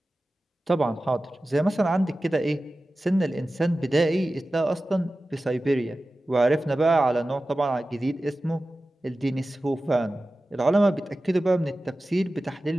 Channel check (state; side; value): normal; both; correlation 0.95